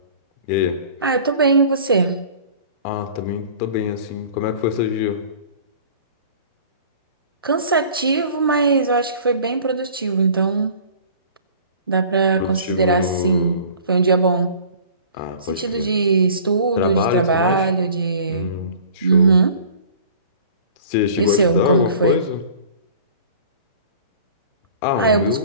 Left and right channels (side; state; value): both; inverted; correlation -0.46